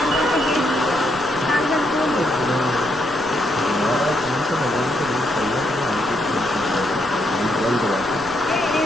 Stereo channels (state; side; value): noise; right; rumble, 19 dB below the sound